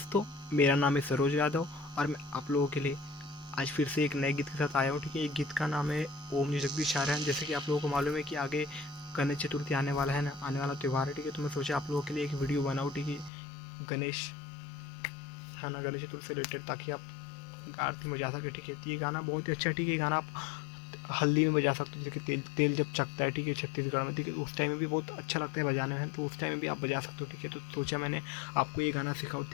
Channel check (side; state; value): right; drops out; at 13.3 s